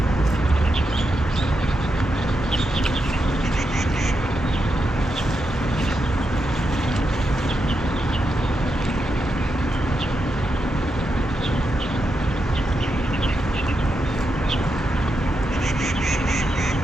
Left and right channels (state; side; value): normal; both; correlation 0.85